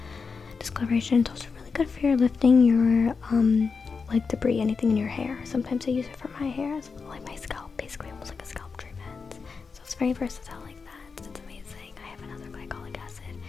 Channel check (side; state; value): right; quieter; 5.0 dB